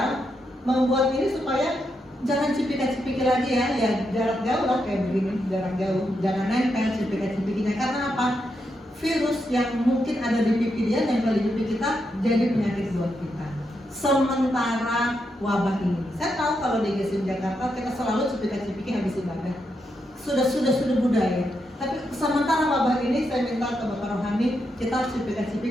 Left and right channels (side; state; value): both; normal; correlation 0.83